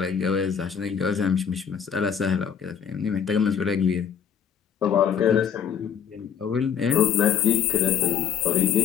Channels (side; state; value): right; quieter; 8.0 dB